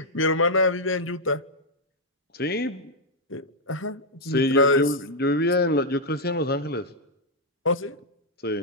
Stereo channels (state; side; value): normal; both; correlation -0.03